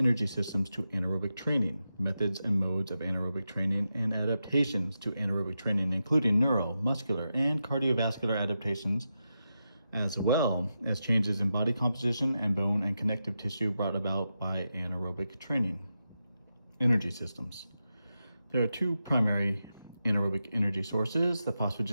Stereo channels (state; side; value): inverted; both; correlation -0.89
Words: systems to anaerobic training, methods and modes of anaerobic training, and adaptations to anaerobic training, including neuro, muscular, and cardiovascular adaptations, as well as changes in body composition and bone and connective tissue brought about by anaerobic training. Energy systems. There are two primary anaerobic energy sources, the